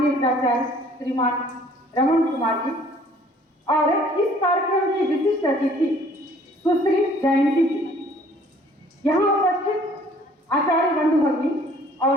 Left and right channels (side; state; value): both; normal; correlation 0.56